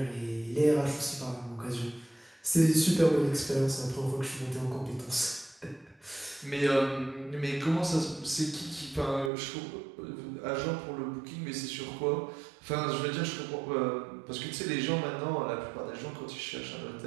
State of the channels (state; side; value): drops out; left; at 9.3 s